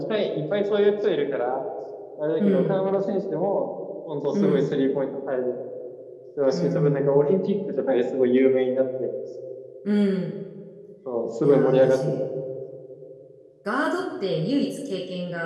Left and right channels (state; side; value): identical; both; correlation 1.00